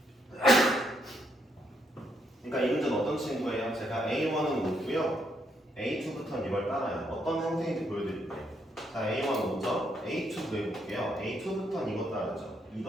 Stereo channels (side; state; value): both; normal; correlation 0.75